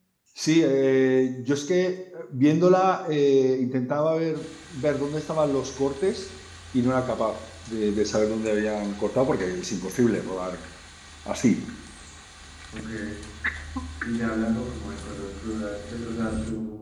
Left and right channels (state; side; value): identical; both; correlation 1.00